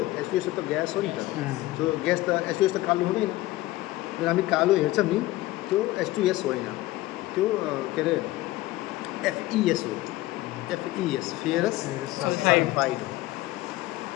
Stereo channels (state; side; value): quieter; right; 17.5 dB